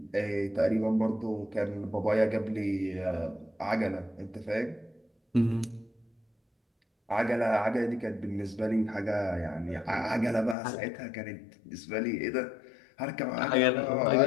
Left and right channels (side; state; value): right; drops out; at 10.6 s